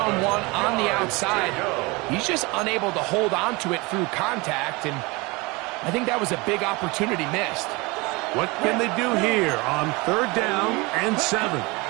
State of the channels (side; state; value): left; quieter; 25.2 dB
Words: on the outside. He's just unable to hold on to it through contact, and I think that was a big opportunity missed. What can they do here on third down and 7?